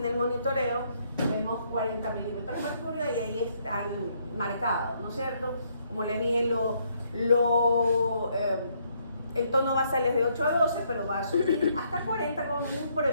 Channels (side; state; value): both; inverted; correlation -0.71